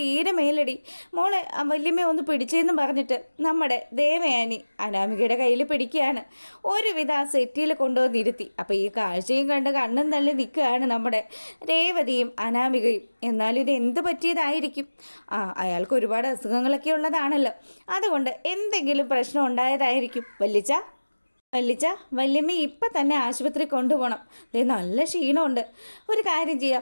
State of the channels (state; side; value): inverted; both; correlation -1.00